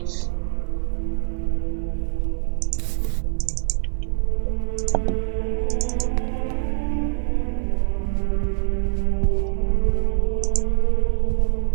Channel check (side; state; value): left; silent; 60 dB below the other